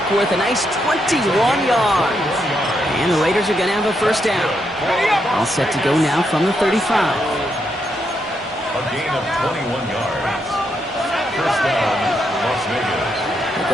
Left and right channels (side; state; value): both; normal; correlation 0.80